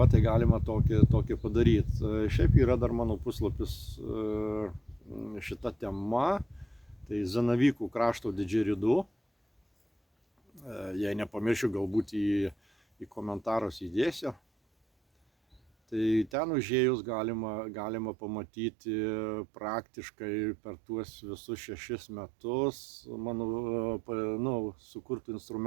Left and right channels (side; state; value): left; drops out; at 16.3 s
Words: tai galima tokį padaryti. Šiaip yra dar mano puslapis šita tema, tai Zanavykų krašto didžeridu. Jei nepamiršiu, galbūt į komentarus įdėsiu. Tai ten užėjus galima pamatyti praktiškai per tuos visus 6 metus mano sukurtų